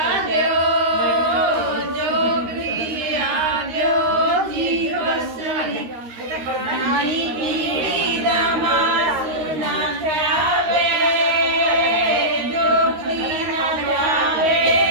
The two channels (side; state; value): left; late; 13 ms